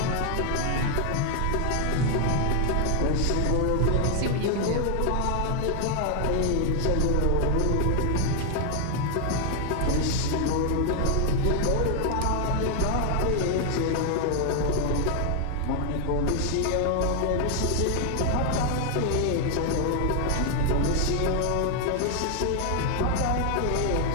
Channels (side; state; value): both; different; correlation 0.00